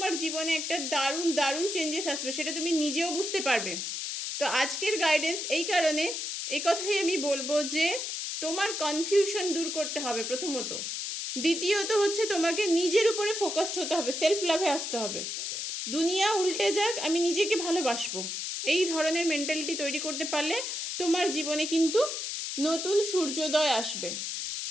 জীবনে একটা দারুণ দারুণ চেঞ্জেস আসবে, সেটা তুমি নিজেও বুঝতে পারবে। তো আজকের গাইডেন্স এই কারণে, এই কথাই আমি বলবো যে তোমার কনফিউশন দূর করতে হবে প্রথমত। দ্বিতীয়ত হচ্ছে তোমাকে নিজের উপরে ফোকাসড হতে হবে, সেলফ লাভে আসতে হবে। দুনিয়া উল্টে যাক, আমি নিজেকে ভালোবাসবো, এই ধরনের মেন্টালিটি তৈরি করতে পারলে তোমার জীবনে কিন্তু নতুন সূর্যোদয় আসবে,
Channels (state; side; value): noise; left; hiss, 4 dB below the sound